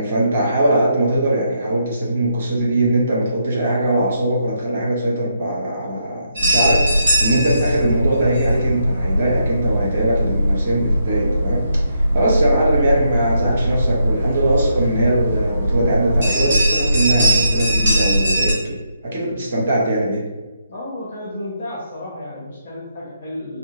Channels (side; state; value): both; inverted; correlation -0.79